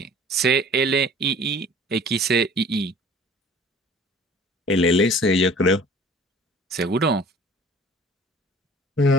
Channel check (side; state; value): both; normal; correlation 0.48